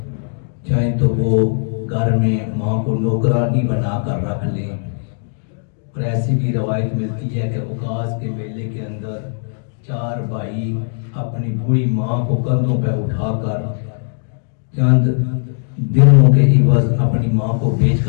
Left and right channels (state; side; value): silent; right; digital silence